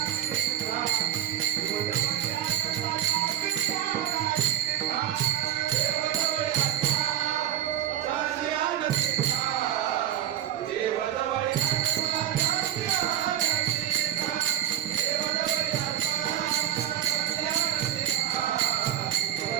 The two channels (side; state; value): left; quieter; 11.5 dB